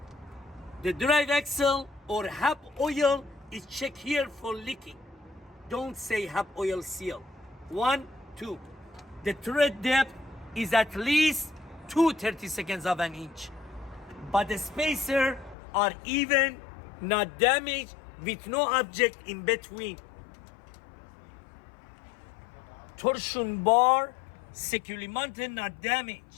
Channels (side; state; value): right; drops out; at 15.6 s